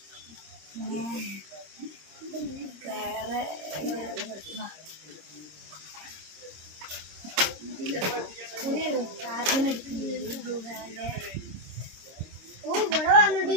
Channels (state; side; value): late; left; 26 ms